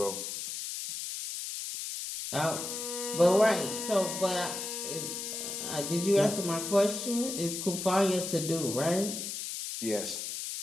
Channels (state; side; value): noise; left; hiss, 5 dB below the sound